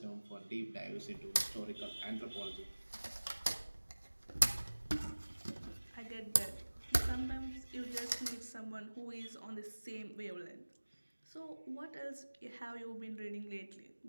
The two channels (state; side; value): inverted; both; correlation -1.00